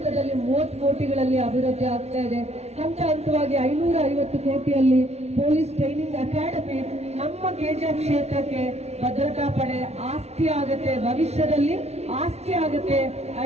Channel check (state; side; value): late; left; 0.31 ms